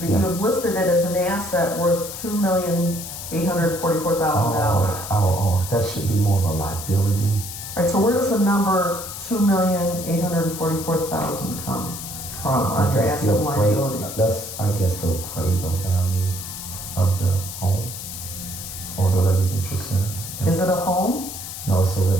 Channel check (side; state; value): left; noise; hiss, 9 dB below the sound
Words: Yeah. you have listed it as an asset worth $2,844,000. Oh, that should be more of a liability. All right, so where does the number $2,844,000 come from on your asset and liability? That's, I guess, the appraisal value of the home or the residential center. Is it a home? No, it's a